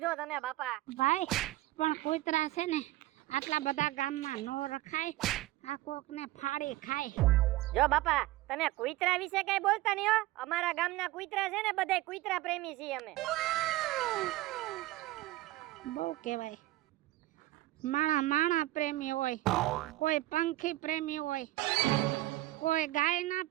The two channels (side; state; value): left; quieter; 17.3 dB